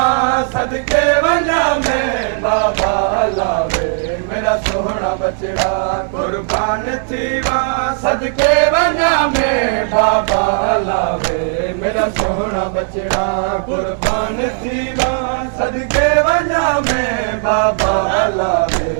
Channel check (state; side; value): silent; left; 58 dB below the other